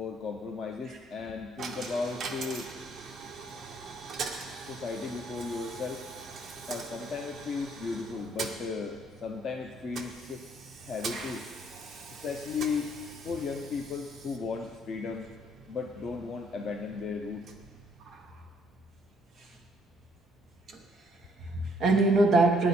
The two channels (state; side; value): normal; both; correlation 0.66